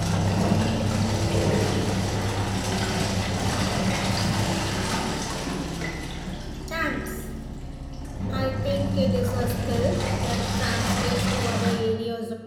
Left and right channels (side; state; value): both; identical; correlation 1.00